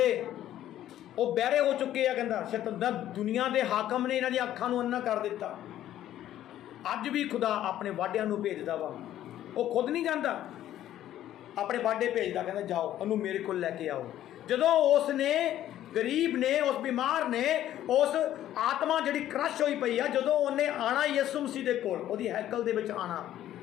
ਉਹ ਬਹਿਰੇ ਹੋ ਚੁੱਕੇ ਆ। ਕਹਿੰਦਾ ਸ਼ੈਤਾਨ, ਦੁਨੀਆ ਦੇ ਹਾਕਮ ਨੇ ਇਹਨਾਂ ਦੀਆਂ ਅੱਖਾਂ ਨੂੰ ਅੰਨਾ ਕਰ ਦਿੱਤਾ। ਅੱਜ ਵੀ ਖੁਦਾ ਆਪਣੇ ਵਾਢਿਆਂ ਨੂੰ ਭੇਜਦਾ ਵਾ, ਉਹ ਖੁਦ ਨਹੀਂ ਜਾਂਦਾ, ਆਪਣੇ ਵਾਢੇ ਭੇਜਦਾ, ਕਹਿੰਦਾ ਜਾਓ ਉਹਨੂੰ ਮੇਰੇ ਕੋਲ ਲੈ ਕੇ ਆਓ। ਜਦੋਂ ਉਸ ਨੇ, ਗਰੀਬ ਨੇ, ਉਸ ਬਿਮਾਰ ਨੇ, ਉਸ ਆਤਮਾ ਜਿਹੜੀ ਕ੍ਰਸ਼ ਹੋਈ ਪਈ ਆ, ਜਦੋਂ ਉਹਨੇ ਆਣਾ ਯਿਸੂ ਮਸੀਹ ਦੇ ਕੋਲ, ਉਹਦੀ ਹੈਕਲ ਦੇ ਵਿੱਚ ਆਣਾ,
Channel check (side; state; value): right; quieter; 12.4 dB